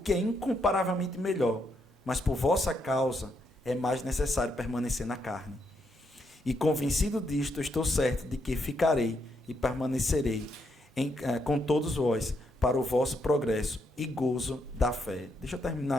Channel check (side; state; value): both; normal; correlation 0.78